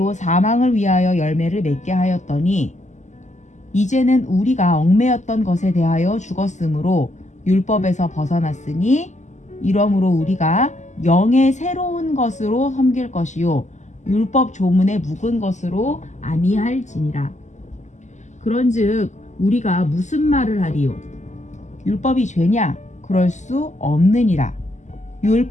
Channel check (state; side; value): late; right; 0.34 ms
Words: 사망을 위하여 열매를 맺게 하였더니 이제는 우리가 얽매였던 것에 대하여 죽었으므로 율법에서 벗어났으니 이러므로 우리가 영의 새로운 것으로 섬길 것이요 율법 조문에 묵은 것으로 아니할지니라. 그런즉 우리가 무슨 말을 하리요? 율법이 죄냐? 그럴 수 없느니라.